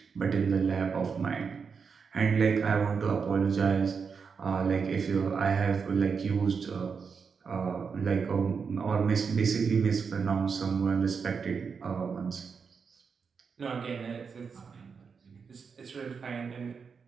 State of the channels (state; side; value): quieter; left; 5.8 dB